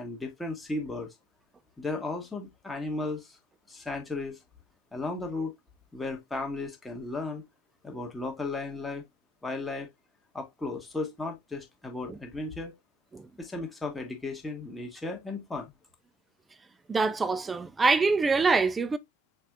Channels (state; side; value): normal; both; correlation 0.78